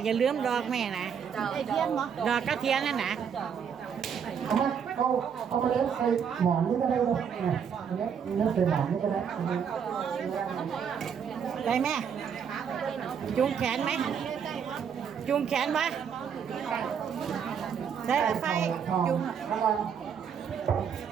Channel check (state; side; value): quieter; left; 7.4 dB